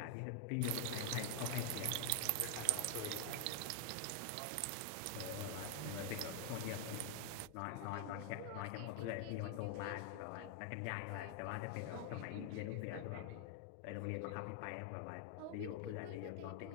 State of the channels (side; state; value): both; different; correlation 0.00